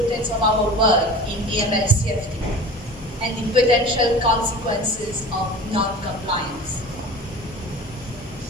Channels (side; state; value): both; normal; correlation 0.38